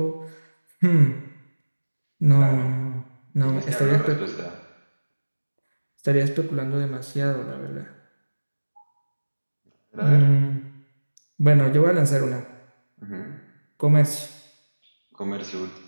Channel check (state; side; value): inverted; both; correlation -1.00